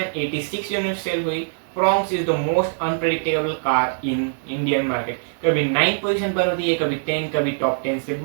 यूनिट सेल हुई। Fronx is the most unpredictable car in Indian market. कभी 9 पोजीशन पर होती है, कभी 10, कभी टॉप 10 से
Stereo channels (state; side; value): silent; left; digital silence